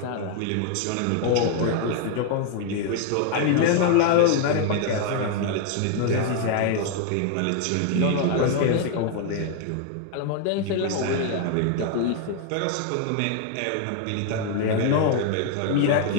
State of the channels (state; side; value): different; both; correlation 0.00